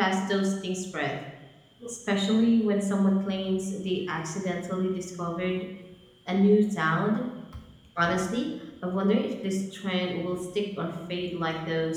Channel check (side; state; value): both; identical; correlation 1.00